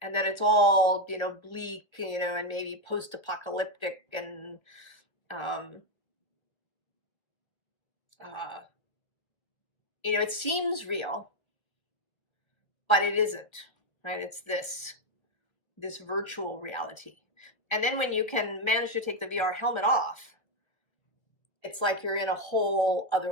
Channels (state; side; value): late; right; 1.3 ms